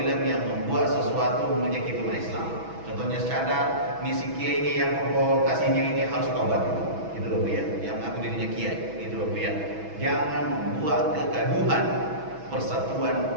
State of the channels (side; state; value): left; late; 6.1 ms